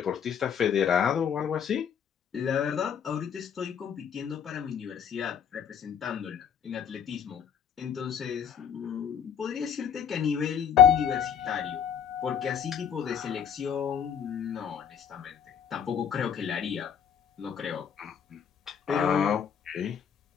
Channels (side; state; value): right; quieter; 8.1 dB